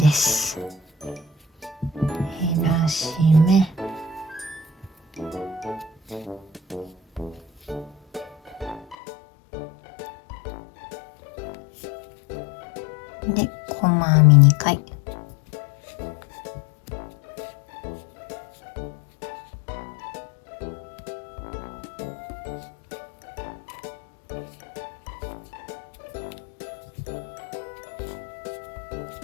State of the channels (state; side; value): drops out; right; at 9.0 s